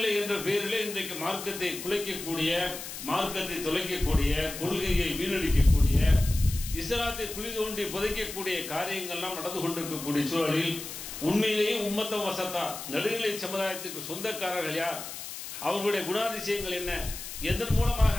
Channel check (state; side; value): noise; left; hiss, 9 dB below the sound